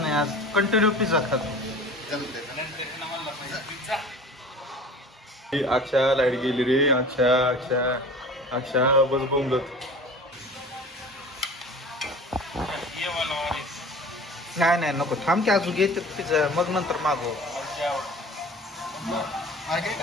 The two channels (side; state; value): both; normal; correlation 0.40